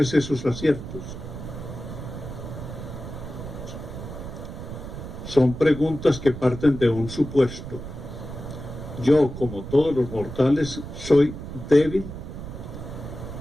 esos aciertos? Son preguntas que parten de un supuesto. Yo, como todos los mortales, soy débil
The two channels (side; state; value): right; noise; rumble, 9 dB below the sound